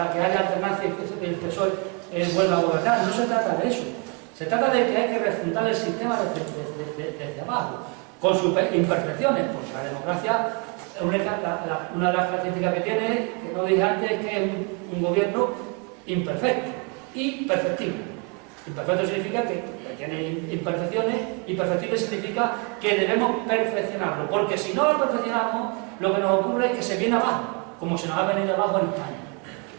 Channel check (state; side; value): quieter; left; 34.2 dB